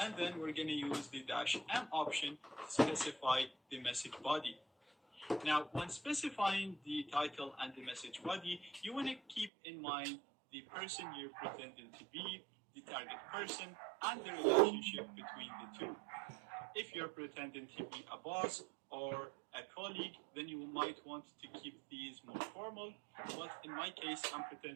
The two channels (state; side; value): drops out; left; at 9.5 s